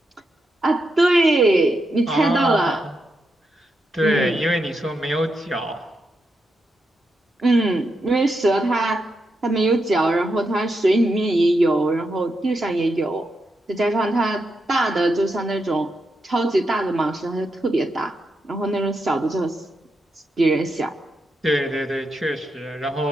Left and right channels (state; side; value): normal; both; correlation 0.85